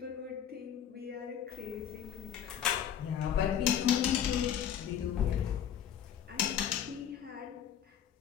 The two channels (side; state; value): right; quieter; 9.4 dB